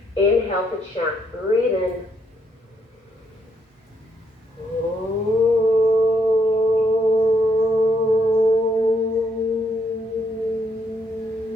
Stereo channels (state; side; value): normal; both; correlation 0.73